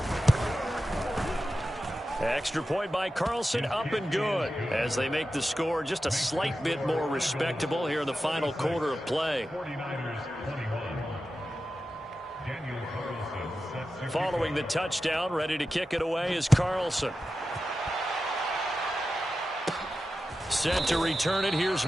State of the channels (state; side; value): normal; both; correlation 0.92